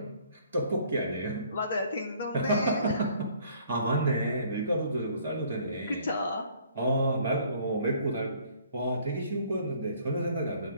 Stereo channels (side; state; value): both; inverted; correlation -0.58